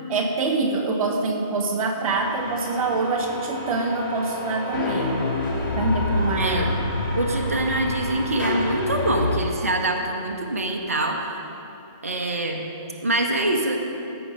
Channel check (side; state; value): both; inverted; correlation -0.43